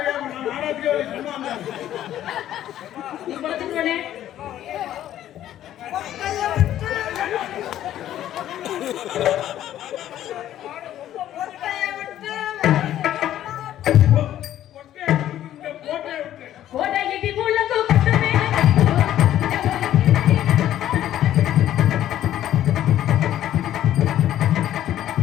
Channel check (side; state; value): right; quieter; 12.1 dB